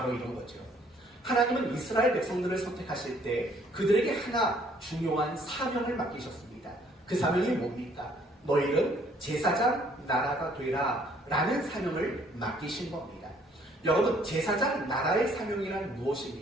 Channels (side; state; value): both; normal; correlation 0.62